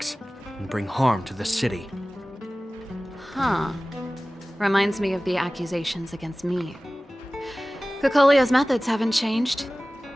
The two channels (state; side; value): normal; both; correlation 0.98